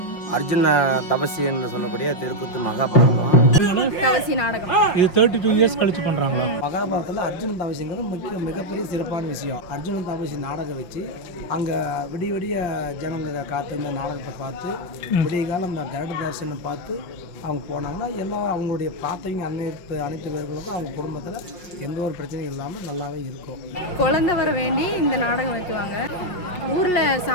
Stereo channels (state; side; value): late; right; 5.4 ms